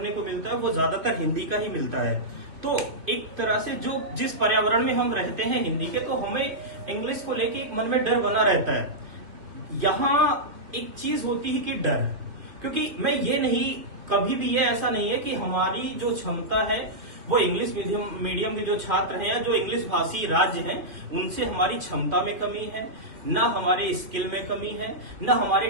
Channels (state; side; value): late; left; 2.7 ms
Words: को मिलता है, वो ज्यादातर हिंदी का ही मिलता है। तो एक तरह से जो जिस पर्यावरण में हम रहते हैं हिंदी के, तो हमें इंग्लिश को लेके एक मन में डर बना रहता है। यहाँ एक चीज होती है कि डर, क्योंकि मैं ये नहीं, कभी भी ये ऐसा नहीं है कि हमारी जो क्षमता है वो इंग्लिश मीडियम के जो छात्र हैं या जो इंग्लिश भाषी राज्य हैं उनसे हमारी क्षमता में कमी है, ना हमारे स्किल में कमी है, ना हमारे